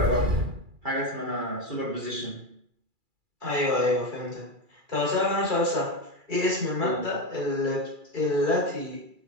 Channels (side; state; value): left; late; 2.3 ms